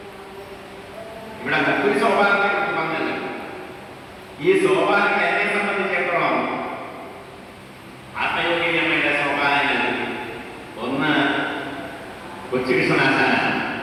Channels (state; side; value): identical; both; correlation 1.00